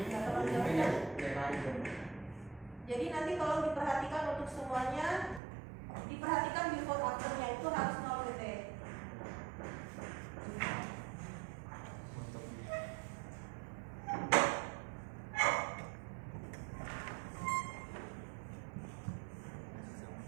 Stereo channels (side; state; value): left; drops out; at 5.4 s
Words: Jadi nanti kalau diperhatikan untuk semuanya, diperhatikan before afternya itu harus 0 PT.